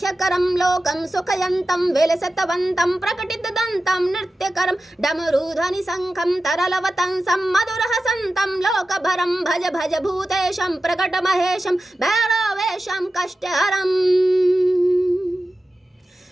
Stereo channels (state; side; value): normal; both; correlation 0.94